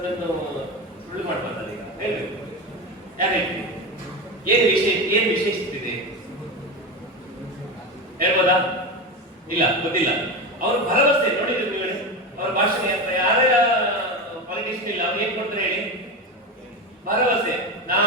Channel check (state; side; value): normal; both; correlation 0.21